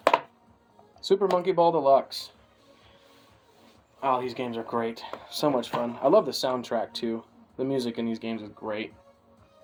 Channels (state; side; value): identical; both; correlation 1.00